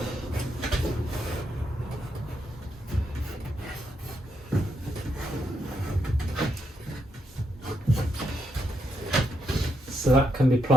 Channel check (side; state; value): both; normal; correlation 0.80